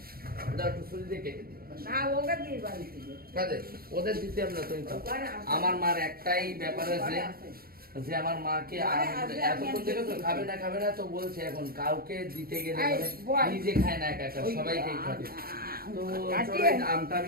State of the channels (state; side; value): late; left; 0.44 ms